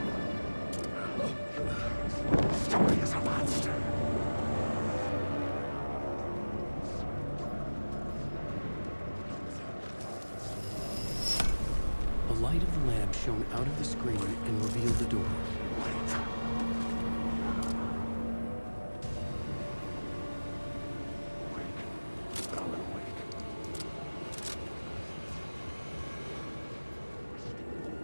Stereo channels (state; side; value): inverted; both; correlation -1.00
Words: Story is a monster. The light of the lamp shone out of the screen and revealed the door.